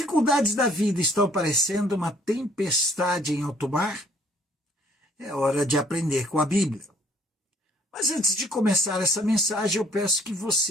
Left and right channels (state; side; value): normal; both; correlation 0.61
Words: da vida estão parecendo uma tempestade em alto mar? É hora de aprender com a Bíblia. Mas antes de começar essa mensagem, eu peço que